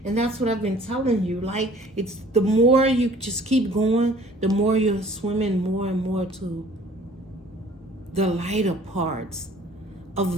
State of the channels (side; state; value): both; normal; correlation 0.51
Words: And that's what I've been telling you. Like, it's the more you just keep going, the more you're swimming more and more to the lighter parts